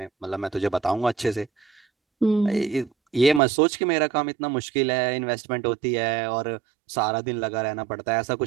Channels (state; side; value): drops out; left; at 3.4 s